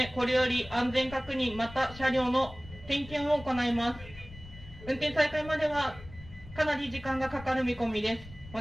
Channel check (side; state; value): left; noise; rumble, 17 dB below the sound